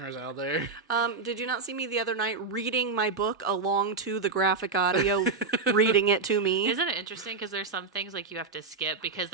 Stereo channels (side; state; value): left; quieter; 4.4 dB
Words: out there. Did you not see me the other night reading my book along to the graphic audio, reading it to me? Isn't it interesting? Because there's some things like you have to skip because